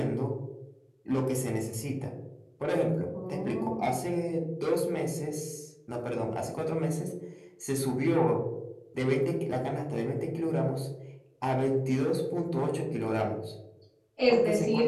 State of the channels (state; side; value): identical; both; correlation 1.00